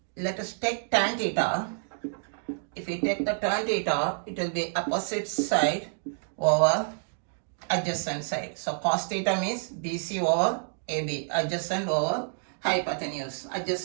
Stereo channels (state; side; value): silent; left; 59 dB below the other